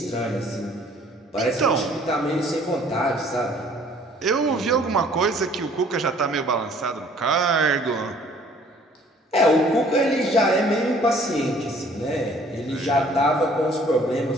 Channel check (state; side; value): normal; both; correlation 0.57